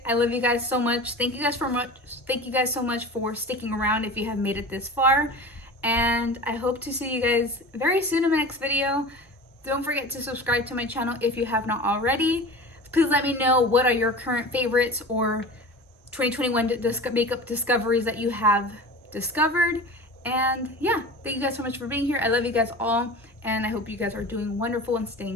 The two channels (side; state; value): both; normal; correlation 0.35